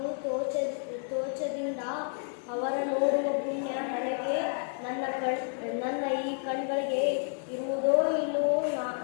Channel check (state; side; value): silent; right; 57 dB below the other